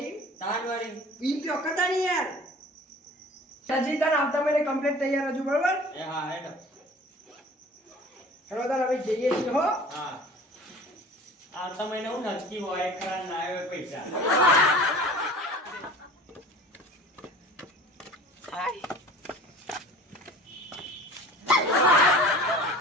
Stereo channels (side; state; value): both; normal; correlation 0.43